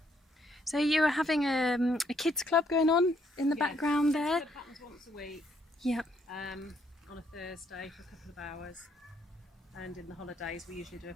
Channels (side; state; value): both; normal; correlation 0.71